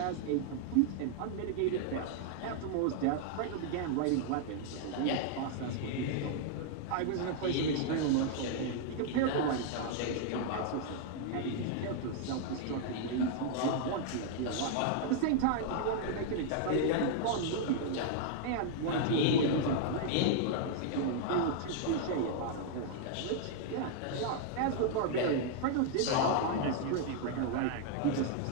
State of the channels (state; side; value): different; both; correlation -0.01